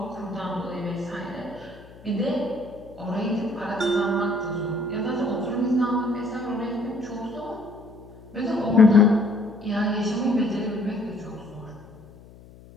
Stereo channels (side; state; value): left; noise; hum, 21 dB below the sound